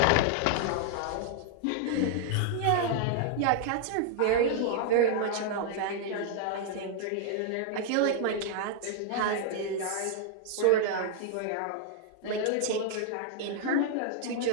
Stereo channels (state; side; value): different; both; correlation 0.00